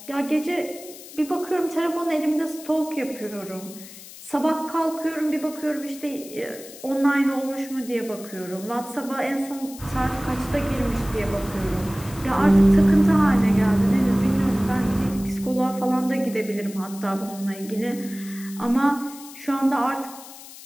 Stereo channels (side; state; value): left; noise; hiss, 16 dB below the sound